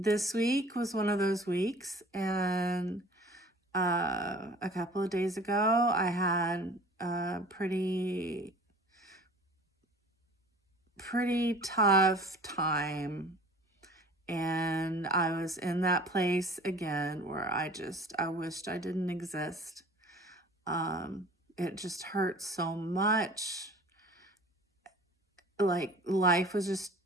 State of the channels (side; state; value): both; normal; correlation 0.45